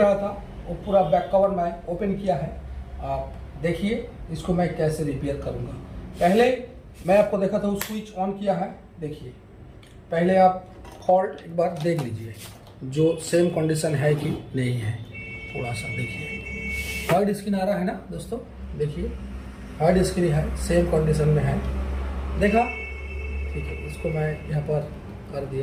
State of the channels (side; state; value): both; identical; correlation 1.00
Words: था वो पूरा बैक कवर मैं ओपन किया है। आप देखिए इसको मैं कैसे रिपेयर करूंगा। पहले मैं आपको देखा था, स्विच ऑन किया है। देखिए पहले आप फॉल्ट एक बार देख लीजिए, जो सेम कंडीशन है कि नहीं है। थोड़ा सा देखिए वाइट स्क्रीन आ रहा है ना दोस्तों, देखिए वाइट स्क्रीन है, सेम कंडीशन में है। देखा, ठीक है। इसको मैं यहाँ पर कर